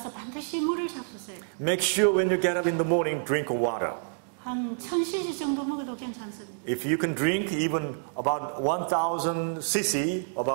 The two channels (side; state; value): left; silent; digital silence